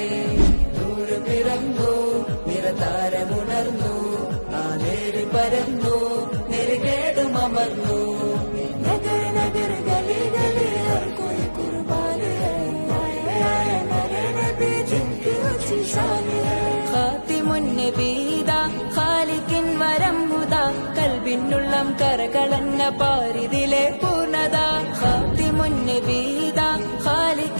നൂർ പിറന്നു നിറതാരമുണർന്നു, ആ നേര് പരന്നു നെരുകേടും അമർന്നു। നഗർ നഗർ ഗലി ഗലി ഹർ കോയി കുർബാൻ ഹൈ, ആയ നബി നബി ജിൻകി ഊंची शान है। ഖാതിമുൻ നബീദാ ഖാലിഖിൻ വരം ഹുദാ, കൽബിനുള്ളം കരകളന്ന പാരിതിലെ പൂർണ്ണത। ഖാതിമുൻ നബീദാ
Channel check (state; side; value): inverted; both; correlation -1.00